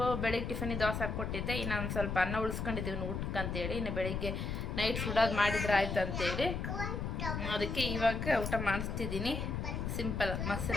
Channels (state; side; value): noise; left; rumble, 3 dB below the sound